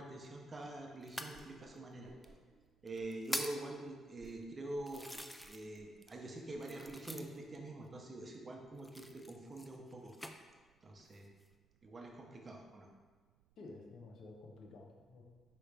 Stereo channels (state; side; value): noise; right; rumble, 28 dB below the sound